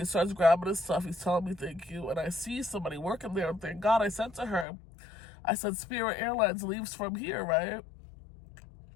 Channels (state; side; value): drops out; right; at 4.7 s